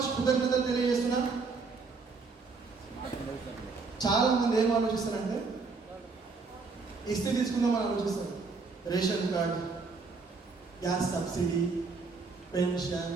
కృతజ్ఞతలు తెలియజేస్తున్నా. చాలా మంది ఏం ఆలోచిస్తారంటే ఇస్తే తీసుకుందామని ఆలోచిస్తారు. Ration card, gas subsidy, pension,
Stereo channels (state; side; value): quieter; left; 4.4 dB